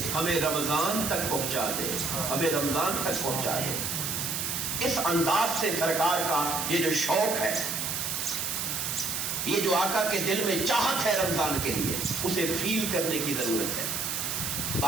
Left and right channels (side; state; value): right; noise; hiss, 2 dB below the sound